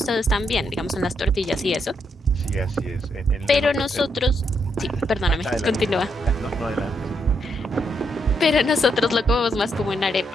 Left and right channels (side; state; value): both; normal; correlation 0.78